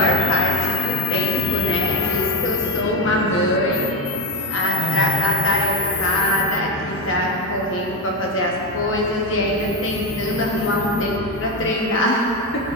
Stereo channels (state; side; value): normal; both; correlation 0.12